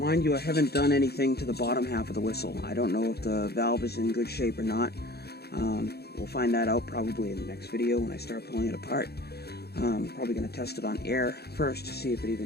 you, I haven't done anything to the bottom half of the whistle. I don't know if the valve is in good shape or not. We'll find that out probably in the next video when I start pulling it apart. Probably going to test it on air first to see if it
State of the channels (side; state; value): right; late; 0.47 ms